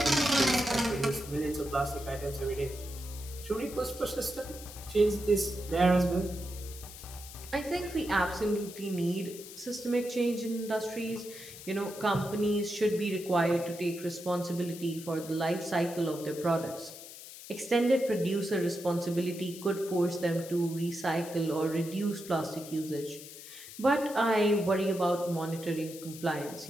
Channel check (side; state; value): left; noise; hiss, 14 dB below the sound